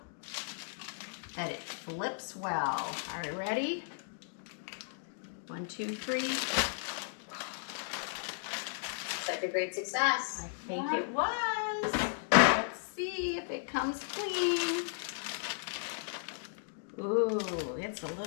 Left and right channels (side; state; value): right; silent; digital silence